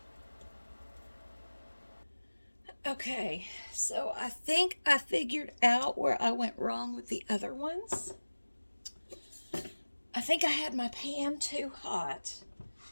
Okay, so I think I figured out where I went wrong with the other ones. I think I had my pan too hot.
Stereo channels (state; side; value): inverted; both; correlation -1.00